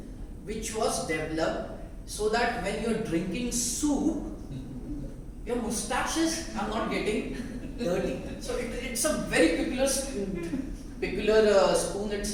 which was developed so that when you are drinking soup, your mustaches are not getting dirty. So it's a very peculiar spoon.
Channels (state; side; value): identical; both; correlation 1.00